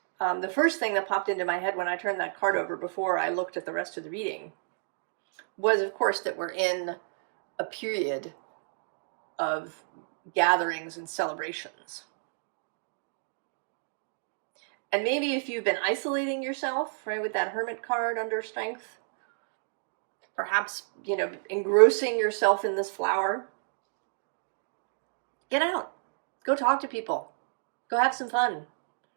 The first thing that popped into my head when I turned that card over before I looked at the rest of the reading was, of course, that we're in a period of gatherings and celebrations. And maybe if you've been isolating yourself, right, with that Hermit card under Strength, perhaps, engrossing yourself in this flower, get out. Go talk to people. Go have some fun.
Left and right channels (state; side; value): silent; left; digital silence